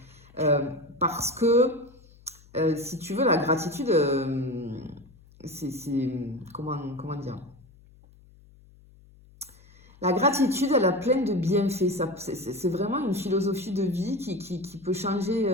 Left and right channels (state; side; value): noise; left; hum, 26 dB below the sound